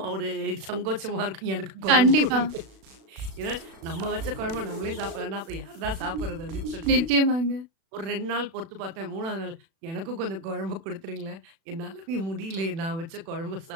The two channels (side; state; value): left; late; 36 ms